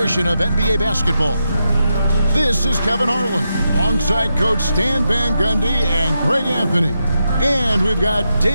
of NBA basketball. This is Kevin Harlan, alongside Coach Stan Van Gundy and Greg Anthony. And we've got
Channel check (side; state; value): both; inverted; correlation -0.86